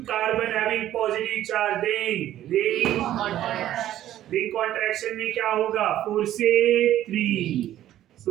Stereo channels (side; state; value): left; quieter; 12.8 dB